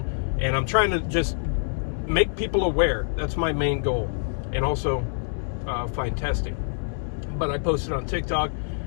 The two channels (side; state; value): right; silent; digital silence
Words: and I'm trying to just make people aware. That's my main goal, and also find testing. But I posted on TikTok